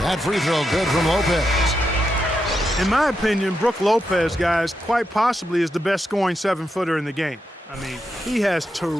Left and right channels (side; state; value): both; normal; correlation 0.85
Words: That free throw good from Lopez. In my opinion, Brook Lopez, guys, quite possibly is the best scoring 7-footer in the game. I mean, he has